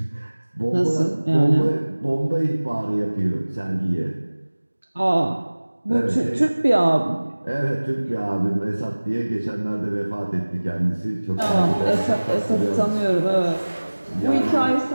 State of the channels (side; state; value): both; inverted; correlation -1.00